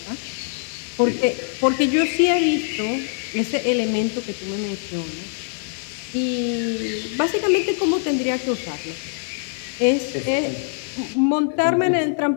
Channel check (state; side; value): silent; right; digital silence